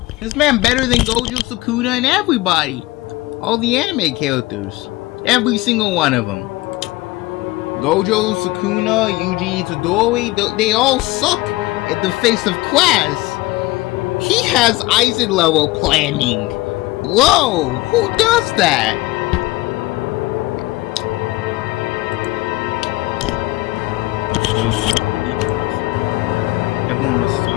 This man better than Gojo, Sukuna, and everybody. All the anime characters. Every single one of them. Gojo, Sukuna, Yuji Itadori, they all suck in the face of class. He has Aizen level planning. Whoa, who does that? Everyone was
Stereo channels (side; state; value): right; quieter; 20.2 dB